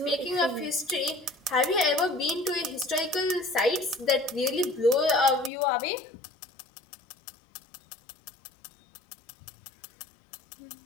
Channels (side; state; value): right; drops out; at 5.5 s